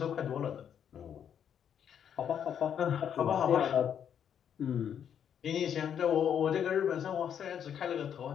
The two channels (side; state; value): right; quieter; 8.7 dB